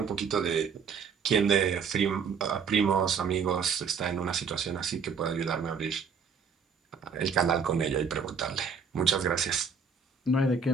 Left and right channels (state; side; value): quieter; left; 5.9 dB